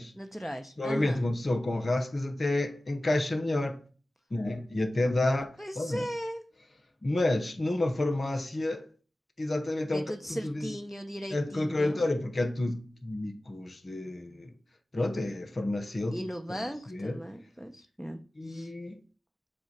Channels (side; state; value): both; normal; correlation 0.96